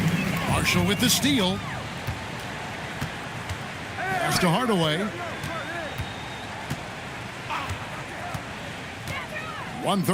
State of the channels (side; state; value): both; identical; correlation 1.00